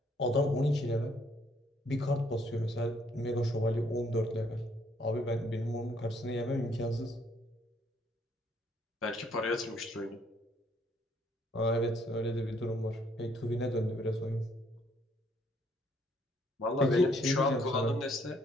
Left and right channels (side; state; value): both; normal; correlation 0.67